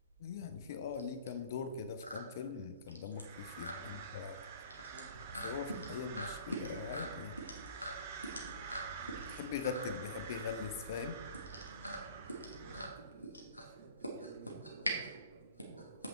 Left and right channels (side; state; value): both; inverted; correlation -0.47